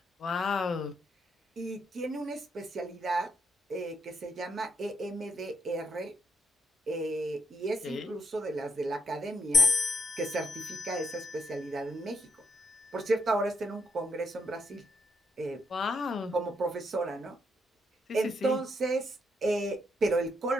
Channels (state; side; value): normal; both; correlation 0.76